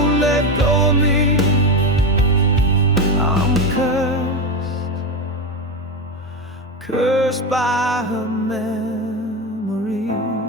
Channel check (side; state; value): both; normal; correlation 0.15